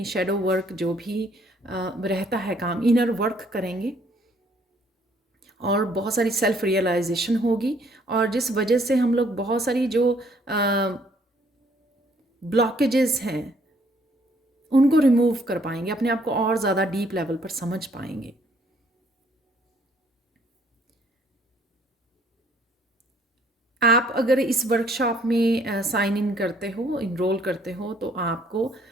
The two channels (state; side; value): normal; both; correlation 0.63